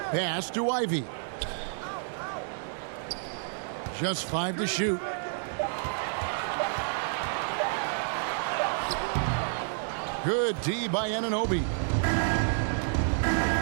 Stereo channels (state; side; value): silent; left; digital silence